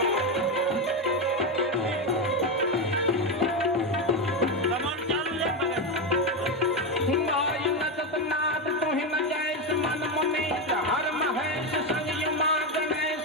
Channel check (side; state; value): both; normal; correlation 0.10